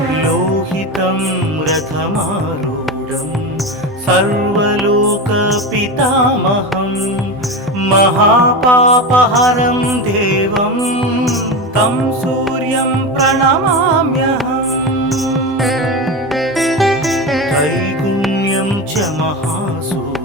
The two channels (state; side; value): normal; both; correlation 0.21